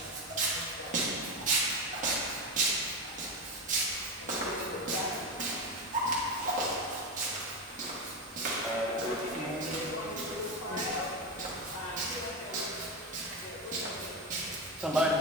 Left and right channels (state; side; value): normal; both; correlation 0.15